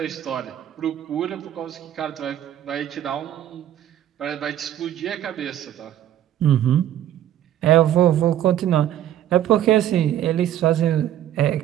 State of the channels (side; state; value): left; quieter; 11.5 dB